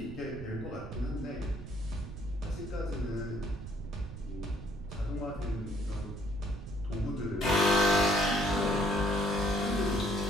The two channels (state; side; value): noise; right; rumble, 11 dB below the sound